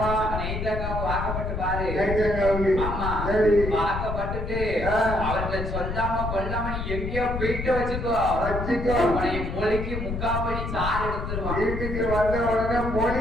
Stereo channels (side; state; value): left; noise; rumble, 4 dB below the sound